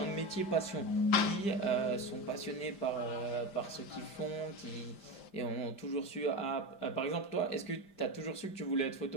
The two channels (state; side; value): late; right; 5.1 ms